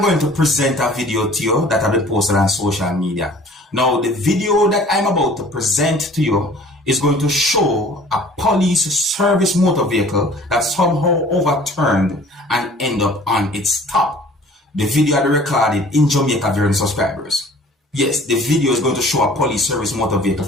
going to present a video to you that have been posted on social media. Now, the video that I'm about to present to you is going to show a police service motor vehicle that somehow overturned and ended up on its top. The video had been recorded in Jamaica, viewers and subscribers. Yes, the video is going to show a police service motor vehicle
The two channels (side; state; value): both; normal; correlation 0.50